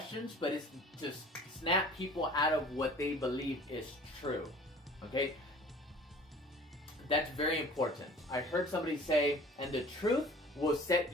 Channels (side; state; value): both; normal; correlation 0.46